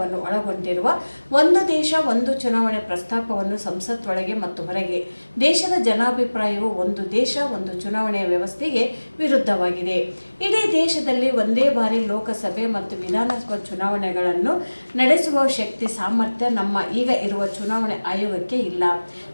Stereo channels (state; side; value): inverted; both; correlation -1.00